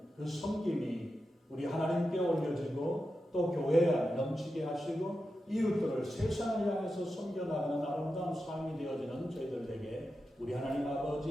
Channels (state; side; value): normal; both; correlation 0.90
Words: 그 섬김이 우리 하나님께 올려지고 또 교회에 넘치게 하시고 이웃들을 세상을 향해서 섬겨나가는 아름다운 삶이 되어지는 저희들에게 우리 하나님